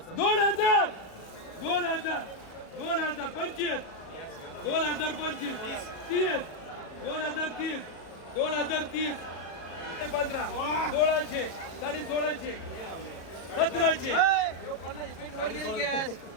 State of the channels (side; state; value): right; late; 37 ms